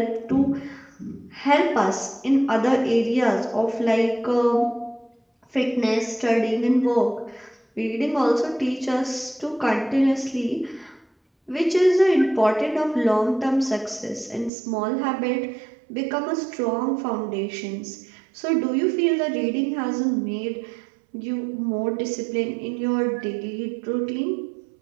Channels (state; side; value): drops out; left; at 14.5 s